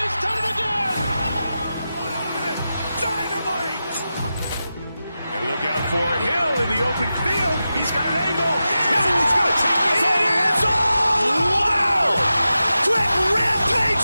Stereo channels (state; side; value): inverted; both; correlation -0.92